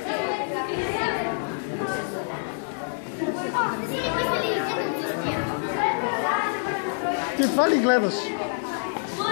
Ти това ли гледаш?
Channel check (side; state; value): right; silent; digital silence